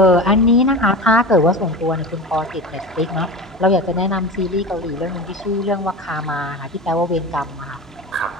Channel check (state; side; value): normal; both; correlation 0.29